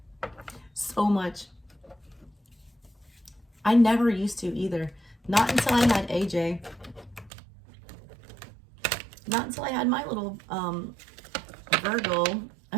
So much. I never used to either. Not until I had AJ. Not until I had my little Virgo.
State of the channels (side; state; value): left; drops out; at 7.3 s